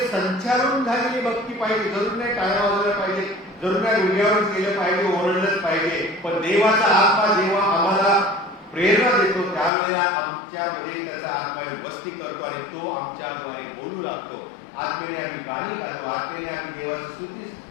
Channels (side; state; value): right; drops out; at 9.7 s